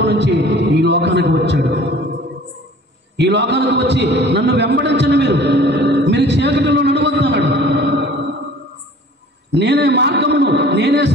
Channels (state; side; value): normal; both; correlation 0.48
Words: నుంచి ఈ లోకానికి వచ్చాడు. ఈ లోకానికి వచ్చి నన్ను వెంబడించండి, మీరు చీకటిలో నడవద్దు అన్నాడు. నేనే మార్గమును, నేనే